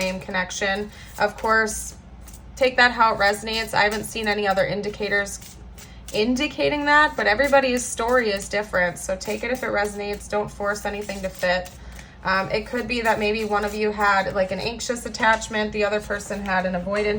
connection. Of course, take that how it resonates. I haven't seen any other indicators indicating that, but everybody's story is different. So take it if it resonates. Don't force anything to fit. It could be that maybe one of you had like an anxious attachment, the other person had an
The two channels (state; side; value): identical; both; correlation 1.00